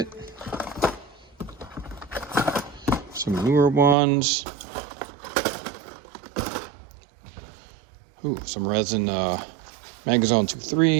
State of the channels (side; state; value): left; drops out; at 4.0 s